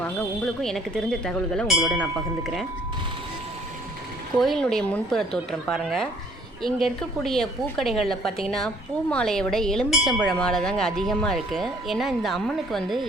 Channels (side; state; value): both; normal; correlation 0.60